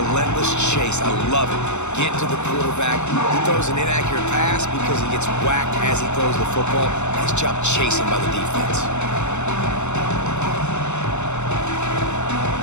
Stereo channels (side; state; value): right; late; 0.83 ms